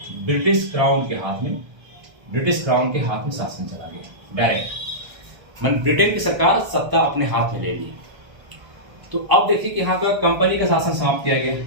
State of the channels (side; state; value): left; late; 1.3 ms